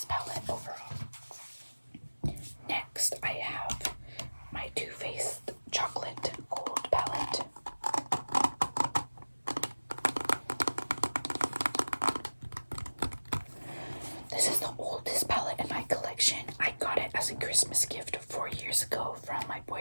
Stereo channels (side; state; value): both; inverted; correlation -1.00